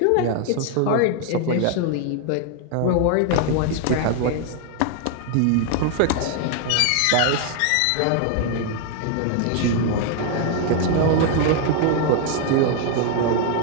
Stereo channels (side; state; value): both; different; correlation 0.00